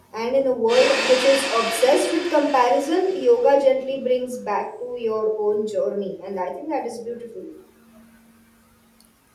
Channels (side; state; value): both; identical; correlation 1.00